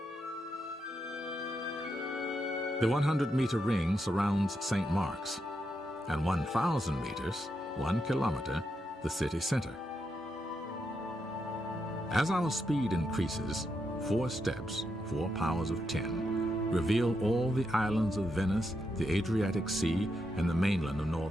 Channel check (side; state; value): both; normal; correlation 0.83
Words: The 100-meter ring surrounds St. Mark's, and 1,000 meters, 1 kilometer, the city center. As our speed increases, 4 steps, 4 powers of 10, reveal all the islands of Venice, the Adriatic Sea, and the mainland of